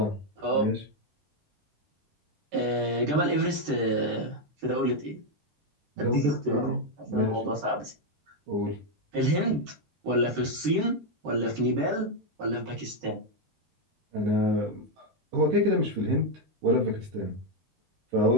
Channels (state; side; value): late; left; 15 ms